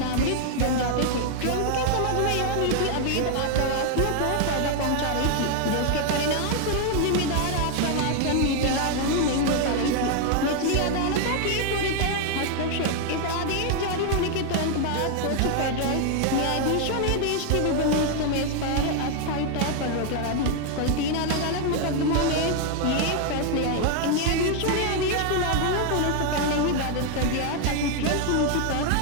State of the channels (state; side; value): different; both; correlation 0.00